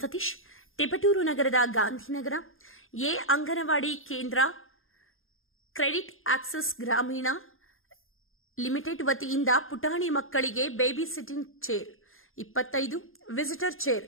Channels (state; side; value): late; right; 0.60 ms